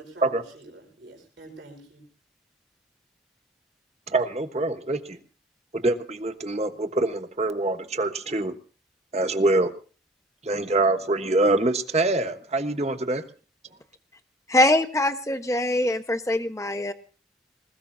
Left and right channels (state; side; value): normal; both; correlation 0.47